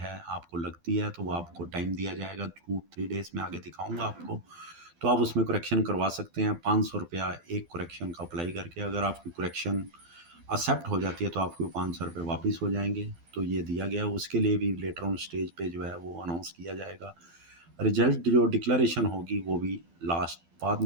आपको लगती है तो वो आपको टाइम दिया जाएगा 2-3 डेज़ में, आगे दिखाऊँगा आपको। तो आप उसमें करेक्शन करवा सकते हैं। 500 रुपया एक करेक्शन का अप्लाई करके। अगर आपकी करेक्शन एक्सेप्ट हो जाती है तो आपको 500 रुपये वापस हो जाएंगे। तो ये दिया गया, उसके लिए भी लेटर ऑन स्टेज पे जो है वो अनाउंस किया जाएगा। रिजल्ट जो डिक्लेरेशन होगी वो भी लास्ट बाद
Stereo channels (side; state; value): left; late; 12 ms